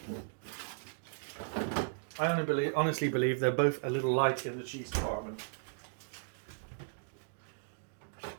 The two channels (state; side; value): silent; left; digital silence